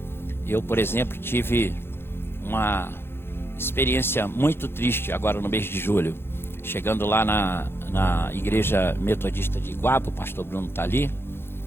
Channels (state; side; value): late; right; 0.11 ms